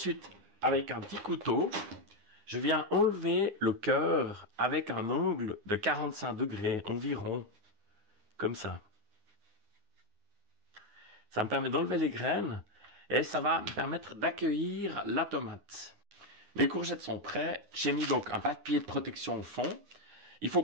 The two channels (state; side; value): late; left; 9.9 ms